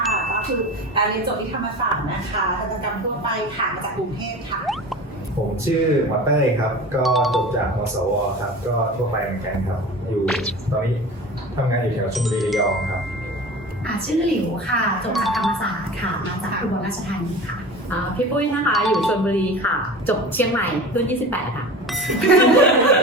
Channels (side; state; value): both; normal; correlation 0.34